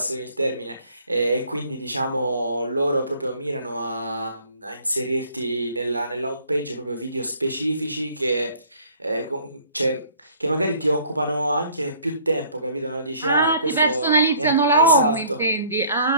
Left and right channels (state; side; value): inverted; both; correlation -0.56